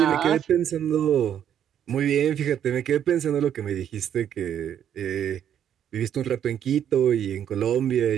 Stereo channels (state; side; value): quieter; left; 9.6 dB